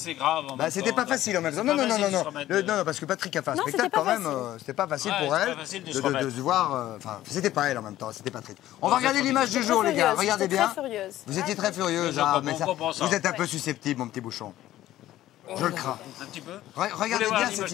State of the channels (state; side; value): quieter; right; 14.1 dB